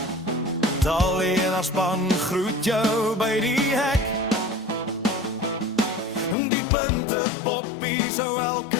Tally en haar span groet jou by die hek. Die punte poppie, so elke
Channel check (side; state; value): right; drops out; at 6.4 s